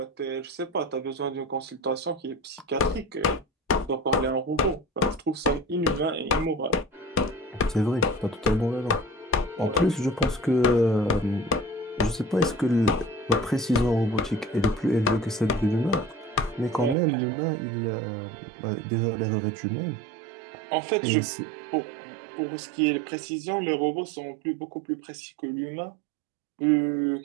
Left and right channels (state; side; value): drops out; left; at 16.9 s